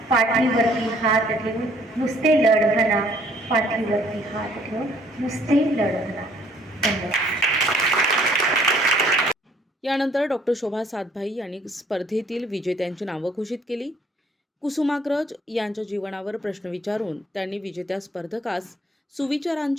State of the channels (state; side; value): normal; both; correlation 0.61